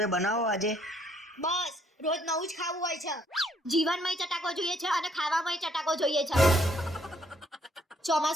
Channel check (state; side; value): normal; both; correlation 0.67